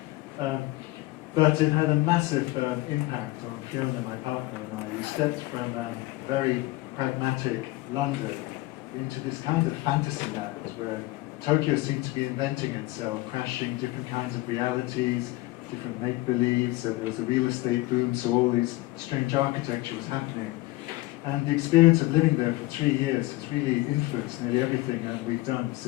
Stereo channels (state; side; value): quieter; right; 19.4 dB